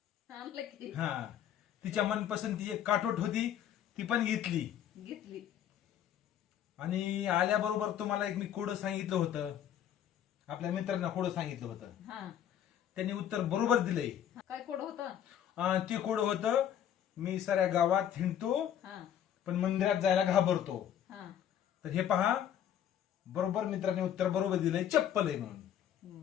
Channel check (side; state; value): right; quieter; 10.0 dB